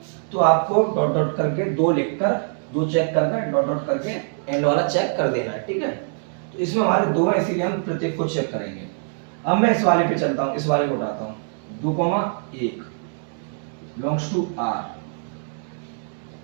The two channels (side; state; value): left; silent; digital silence